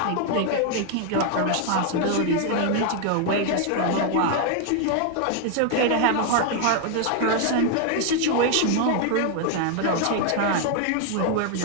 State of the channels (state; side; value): different; both; correlation 0.00